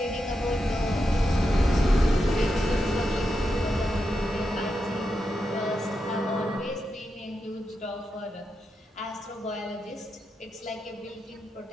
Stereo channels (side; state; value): both; normal; correlation 0.87